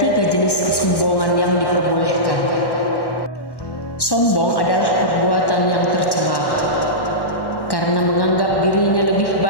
jenis kesombongan yang diperbolehkan. Sombong adalah perbuatan yang tercela karena menganggap dirinya lebih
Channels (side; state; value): right; late; 1.1 ms